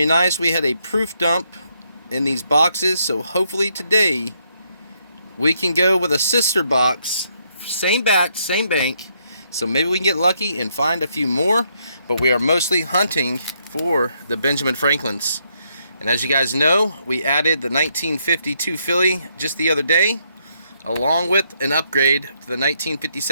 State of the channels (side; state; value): both; inverted; correlation -0.75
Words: nice. We had a proof dump in these boxes, so hopefully today we can go with a sister box, same batch, same bank, so maybe we can get lucky and find a few more. But we are mostly hunting for the Benjamin Franklins, and as you guys know, we added the 1952 filly just the other day, along with an upgrade to the